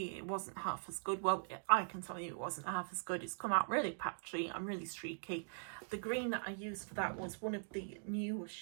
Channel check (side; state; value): left; silent; digital silence